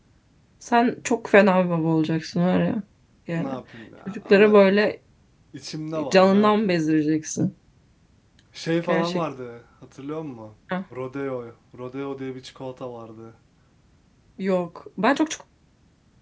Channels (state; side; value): identical; both; correlation 1.00